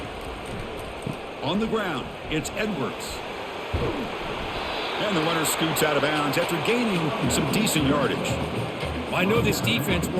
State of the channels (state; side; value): identical; both; correlation 1.00